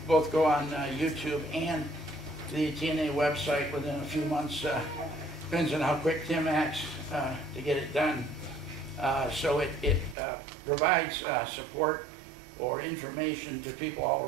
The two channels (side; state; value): left; drops out; at 10.2 s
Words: both go on YouTube and the TNA website within a few months. Depends on how quick Tim acts to get it done. So it provides support or information to people all